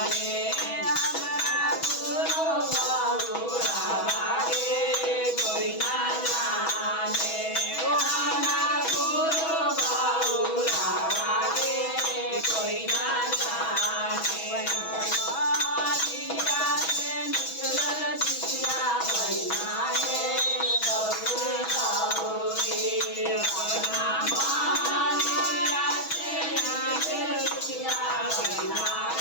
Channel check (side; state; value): right; late; 6.2 ms